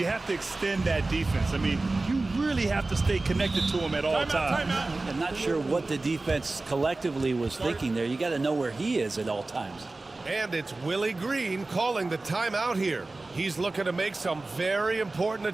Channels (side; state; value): left; quieter; 3.2 dB